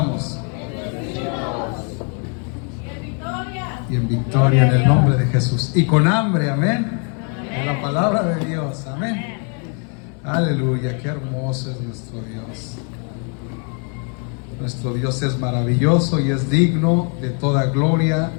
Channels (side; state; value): right; quieter; 39.4 dB